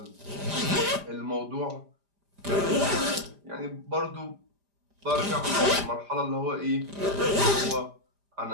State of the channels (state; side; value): late; left; 5.0 ms